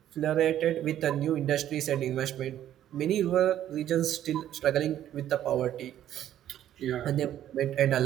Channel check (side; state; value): left; quieter; 11.5 dB